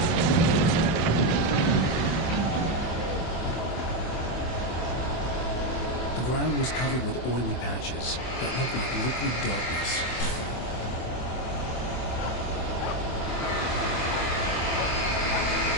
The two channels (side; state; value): right; late; 24 ms